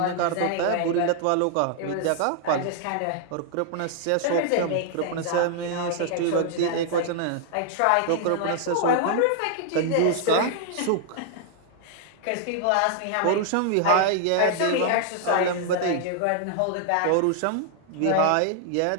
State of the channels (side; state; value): both; different; correlation -0.01